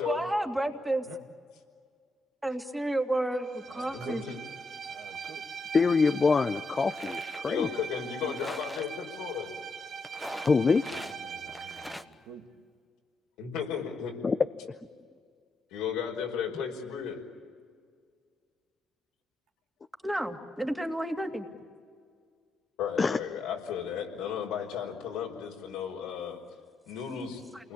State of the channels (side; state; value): right; quieter; 3.1 dB